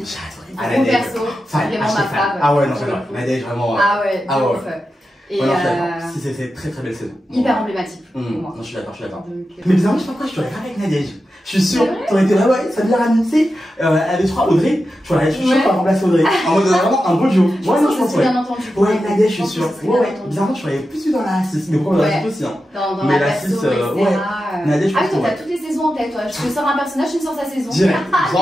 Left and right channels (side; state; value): both; normal; correlation 0.91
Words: j'ai adoré. Un bon perso, c'est vraiment ma fave. Ah ouais, non, j'adore. Nadège, vraiment. Ah ouais, ouf. Et si c'est très belle saison. Hyper emblématique pour moi. Non, je suis d'accord. Mais bizarrement, je sais pas pourquoi je t'aurais pas avec Nadège. Je suis sûr, t'aurais été là, ça vient ramener, elle est, je crois, Audrey. Je suis sûr qu'on va remplacer Audrey. En mode vraiment un beau duo. Ouais, non, je pense, bien entendu. Ouais, Nadège, je suis sûr. Bizarrement, je serais plus dans la 6, mais pourquoi dans la 6 aussi, hein. Dans la 6, Nadège, ah oui, toi, t'as toutes les saisons en tête, toi. Je te sors un personnage, tu me sors sa saison. Direct,